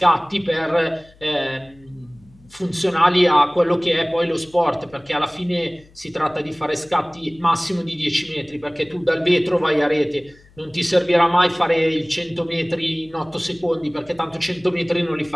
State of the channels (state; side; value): noise; left; hum, 28 dB below the sound